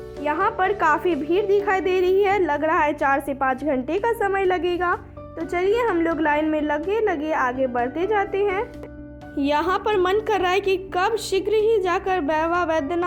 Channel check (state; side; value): identical; both; correlation 1.00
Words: यहाँ पर काफ़ी भीड़ दिखाई दे रही है। लग रहा है 4 से 5 घंटे का समय लगेगा। तो चलिए हम लोग लाइन में लगे आगे बढ़ते जाते हैं। यहाँ पर मन कर रहा है कि कब शीघ्र ही जाकर बाबा